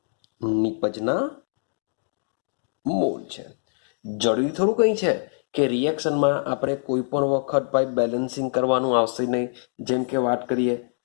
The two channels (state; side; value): silent; right; digital silence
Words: નિપજના મોલ છે. જરૂરી થોડું કંઈ છે કે રિએક્શનમાં આપણે કોઈ પણ વખત ભાઈ બેલેન્સિંગ કરવાનું આવશે નહીં. જેમ કે વાત કરીએ